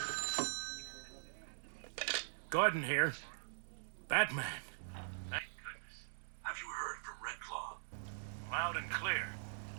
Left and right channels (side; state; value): left; silent; digital silence